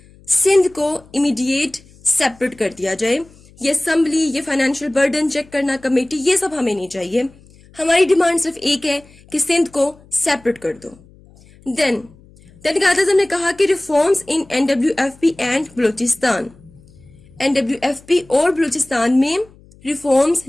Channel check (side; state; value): left; noise; hum, 26 dB below the sound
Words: Sindh کو امیڈیٹ سیپریٹ کر دیا جائے. یہ اسمبلی, یہ فائنینشیل برڈن چیک کرنا, کمیٹی, یہ سب ہمیں نہیں چاہیے. ہماری ڈیمانڈ صرف ایک ہے کہ سندھ کو سیپریٹ کر دو. دین قائد اعظم نے کہا کہ reforms in NWFP and Balochistan, NWFP اور بلوچستان میں ریفارمز